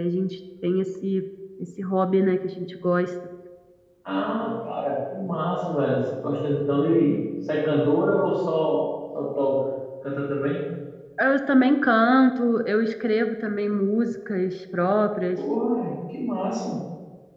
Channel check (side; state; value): both; identical; correlation 1.00